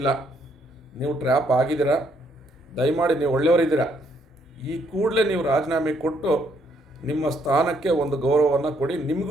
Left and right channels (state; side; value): normal; both; correlation 0.70